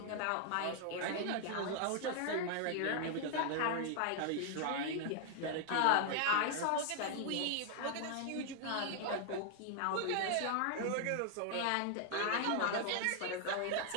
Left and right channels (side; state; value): both; different; correlation 0.00